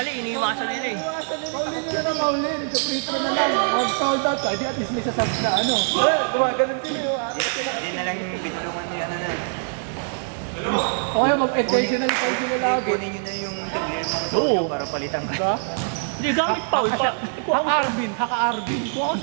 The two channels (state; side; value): silent; left; digital silence